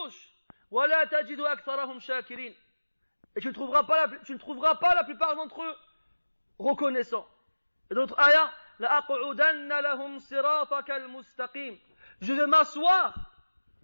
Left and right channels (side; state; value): both; inverted; correlation -1.00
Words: وَلَا تَجِدُ أَكْثَرَهُمْ شَاكِرِينَ. Et tu ne trouveras pas la plupart d'entre eux reconnaissants. Et d'autres ayats, لَأَقْعُدَنَّ لَهُمْ صِرَاطَكَ الْمُسْتَقِيمِ. Je vais m'asseoir